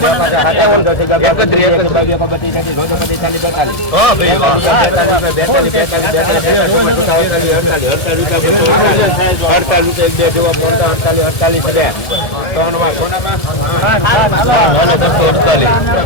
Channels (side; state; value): right; late; 1.5 ms